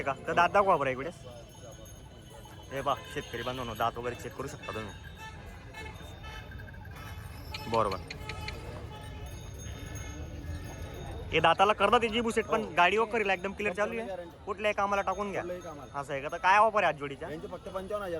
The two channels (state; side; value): identical; both; correlation 1.00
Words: का? तर दात दाखवा बरं इकडे. हे पहा शेतकरी बांधवांनो, दात वगैरे चेक करू शकता तुम्ही. बरोबर. हे दाताला करतात जी बुसेट, पण गाडी वगैरे एकदम क्लिअर चालू आहे. कुठल्याही कामाला टाकून घ्या कुठलंही कामाला. असं आहे का? तर काय ऑफर आहे आज जोडीच्या? यांचे फक्त